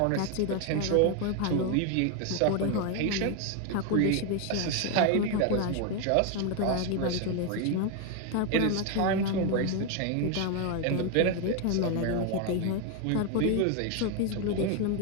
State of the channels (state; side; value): different; both; correlation 0.01